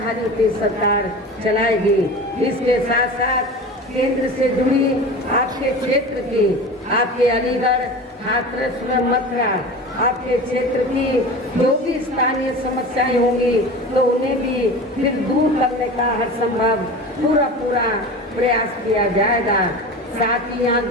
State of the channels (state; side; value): normal; both; correlation 0.33